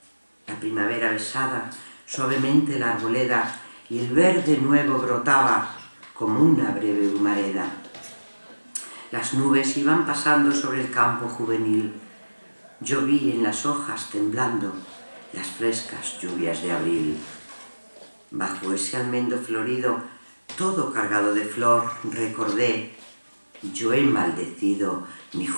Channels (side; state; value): both; inverted; correlation -1.00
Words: La primavera besaba suavemente la arboleda y el verde nuevo brotaba como una breve humareda. Las nubes iban pasando sobre el campo juvenil. Yo vi en las hojas temblando las frescas lluvias de abril. Bajo ese almendro florido, todo cargado de flor, recordé yo he maldecido mi